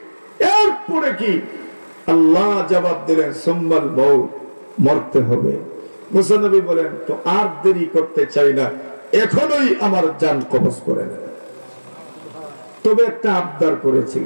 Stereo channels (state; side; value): inverted; both; correlation -1.00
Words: এরপরে কি? আল্লাহ জবাব দিলেন, সুম্মাল মাউত, মরতে হবে। মুসা নবী বলেন, তো আর দেরি করতে চাই না, এখনই আমার জান কবজ করে নেন। তবে একটা আবদার